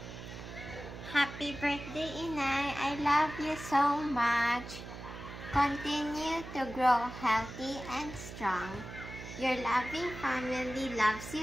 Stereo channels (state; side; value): noise; right; hum, 11 dB below the sound